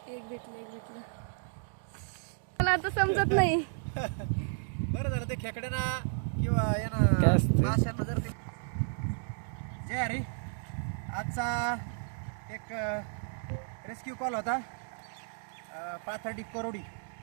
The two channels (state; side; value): silent; left; digital silence